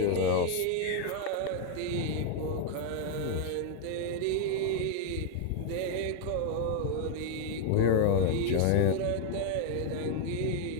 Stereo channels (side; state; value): both; different; correlation 0.00